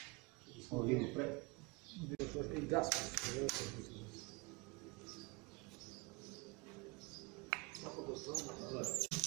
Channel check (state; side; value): quieter; left; 26.8 dB